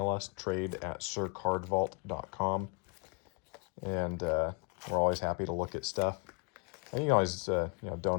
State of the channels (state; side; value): quieter; right; 35.2 dB